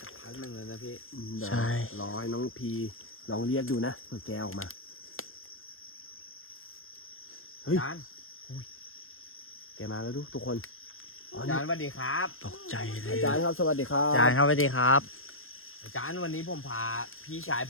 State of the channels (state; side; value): late; right; 0.60 ms